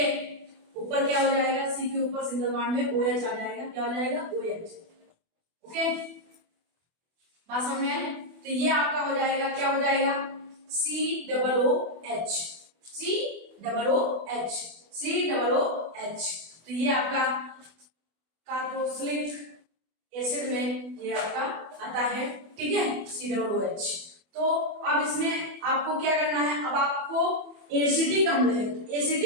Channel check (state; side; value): late; left; 24 ms